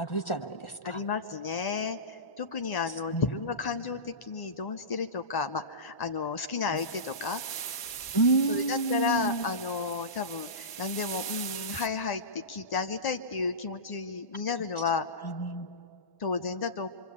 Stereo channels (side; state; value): right; late; 1.1 ms